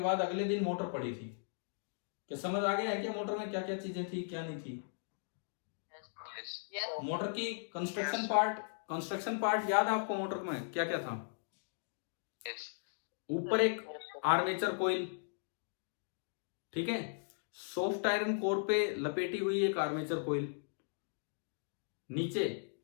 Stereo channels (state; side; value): silent; right; digital silence